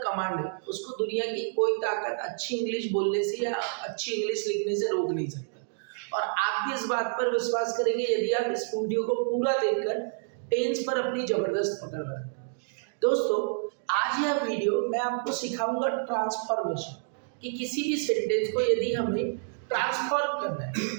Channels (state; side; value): silent; left; digital silence